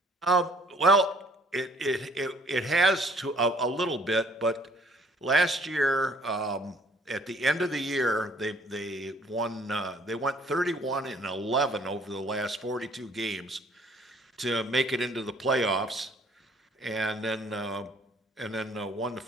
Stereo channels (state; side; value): normal; both; correlation 0.60